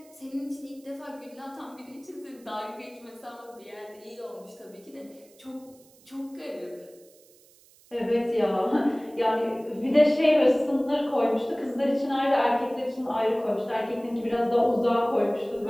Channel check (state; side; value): noise; right; hiss, 28 dB below the sound